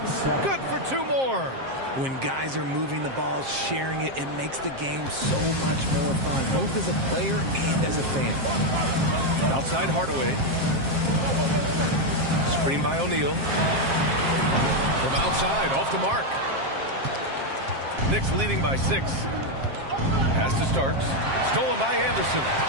Good for 2 more. When guys are moving the ball, sharing it, it makes the game so much more fun, both as a player and as a fan. Outside Hardaway. Screen by O'Neal. From outside, off the mark. Knicks leading by 6. Pass to Starks. Stolen by Anderson.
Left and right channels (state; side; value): late; left; 7.5 ms